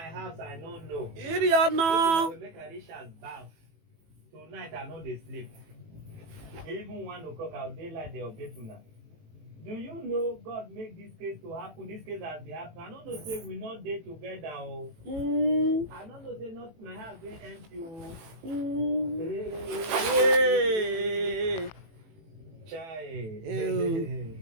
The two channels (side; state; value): left; late; 18 ms